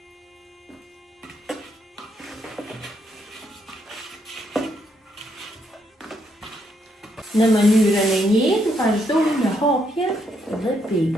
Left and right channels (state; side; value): normal; both; correlation 0.75